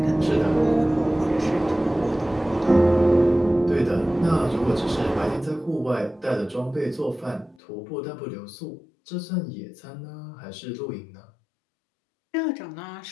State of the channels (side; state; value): right; drops out; at 7.6 s